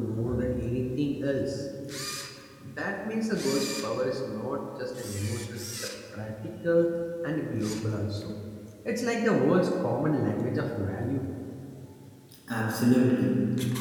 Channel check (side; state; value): both; identical; correlation 1.00